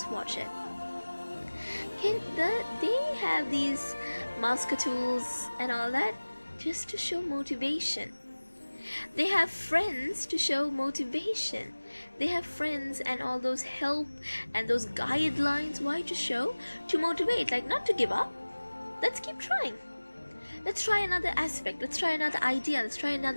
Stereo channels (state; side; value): inverted; both; correlation -1.00